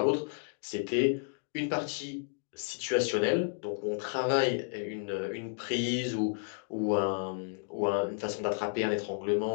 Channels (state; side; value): silent; right; 56 dB below the other